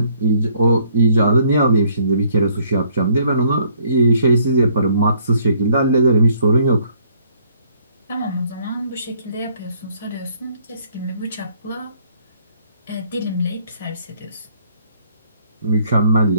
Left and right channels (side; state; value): both; inverted; correlation -0.64